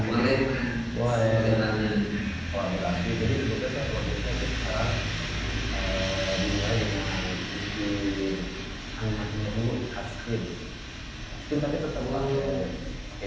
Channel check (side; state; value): both; identical; correlation 1.00